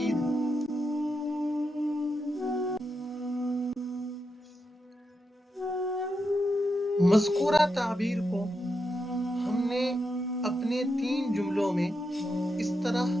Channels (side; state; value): both; normal; correlation 0.85